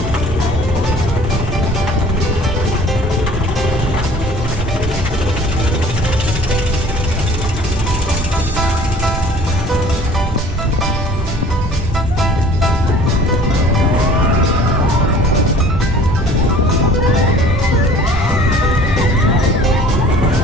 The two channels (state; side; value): noise; right; rumble, 5 dB below the sound